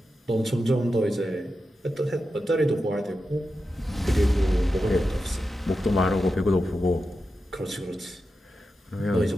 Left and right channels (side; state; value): both; normal; correlation 0.90